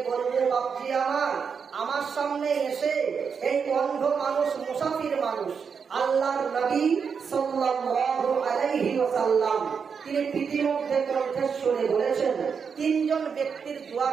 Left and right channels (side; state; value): left; quieter; 6.2 dB